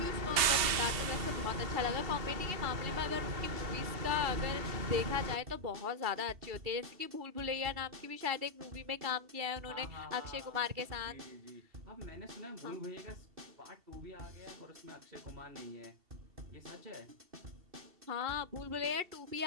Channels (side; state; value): left; late; 2.7 ms